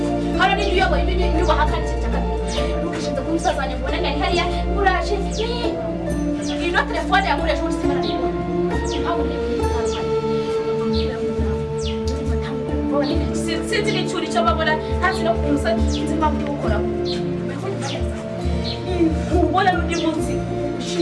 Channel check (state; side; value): identical; both; correlation 1.00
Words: hano ni uyoboye ibintu bahakana cyane ukishinda ku musaza wanjye mbona ngari hariya uraje ino telefone yamureje muri simana ntabwo sinzi n'icyuri cyo babona ntazi no kuza nzima byo gukora ubona n'undi munsi